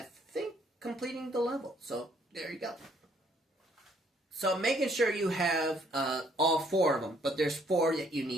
think completing the level. So, there you go. So, making sure you have all 4 of them. But there's 4 that you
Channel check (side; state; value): both; normal; correlation 0.66